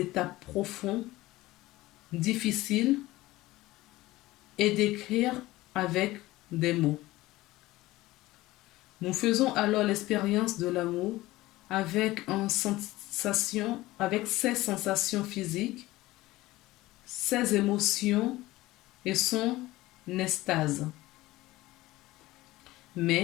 profond, difficile et décrire avec des mots. Nous faisons alors l'expérience de l'amour avec ses sensations physiques, ses émotions et son extase.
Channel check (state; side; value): quieter; right; 18.1 dB